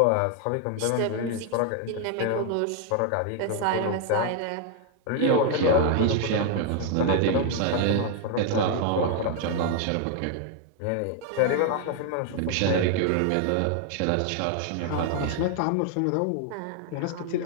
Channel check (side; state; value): both; different; correlation 0.00